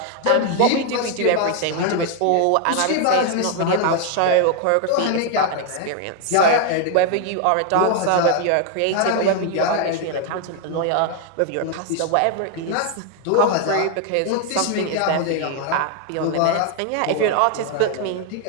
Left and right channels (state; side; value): different; both; correlation 0.00